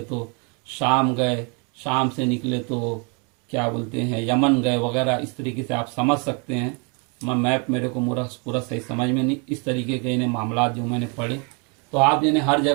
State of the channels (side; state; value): left; quieter; 34.3 dB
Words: तो शाम गए, शाम से निकले तो क्या बोलते हैं यमन गए वगैरह। इस तरीके से आप समझ सकते हैं। मैप मेरे को पूरा सही समझ में नहीं, इस तरीके के इन्हें मामला जो मैंने पढ़े। तो आप इन्हें हर